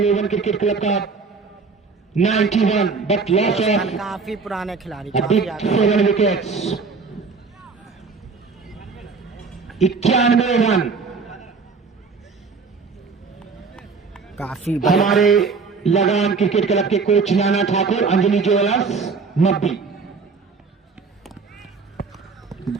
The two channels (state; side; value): quieter; left; 4.7 dB